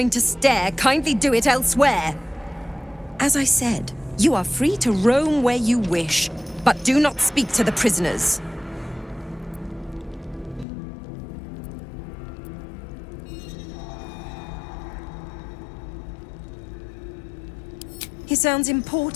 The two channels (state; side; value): drops out; right; at 10.7 s